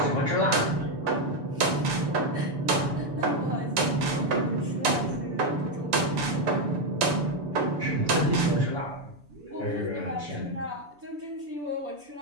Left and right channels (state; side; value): late; left; 6.9 ms